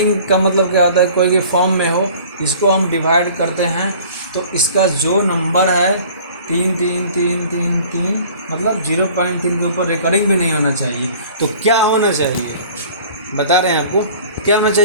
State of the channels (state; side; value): inverted; both; correlation -0.48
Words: का मतलब क्या होता है, कोई भी फॉर्म में हो, इसको हम डिवाइड करते हैं, तो इसका जो नंबर है 3 3 3 3 3, मतलब 0.3 के ऊपर रिकरिंग भी नहीं होना चाहिए। तो क्या होना चाहिए, बता रहे हैं आपको क्या होना